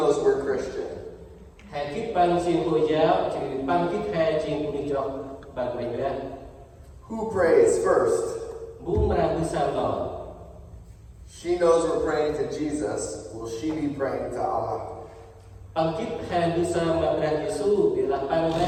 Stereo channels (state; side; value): identical; both; correlation 1.00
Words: we're Christian. Hai kiếp bang xin Hồi giáo, chỉ bang kiếp hai xin cũng đi cho bang mình ra. Who prays first? Bún mà bước sang lò. She knows we're praying to Jesus. Will she be praying to Allah? Bang kiếp hai bước sang mà Brah Yesu, bila bang